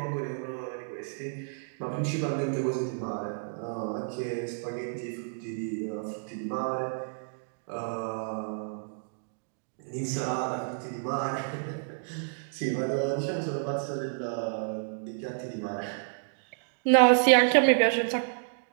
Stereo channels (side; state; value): left; silent; digital silence